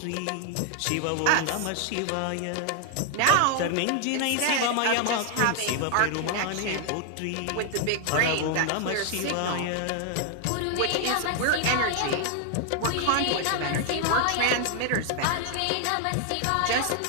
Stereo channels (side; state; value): both; different; correlation 0.00